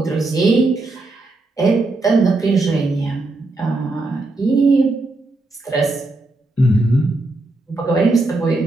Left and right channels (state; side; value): quieter; left; 3.0 dB